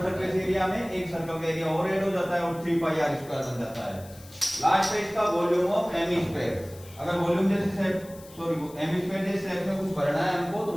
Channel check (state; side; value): noise; left; hiss, 21 dB below the sound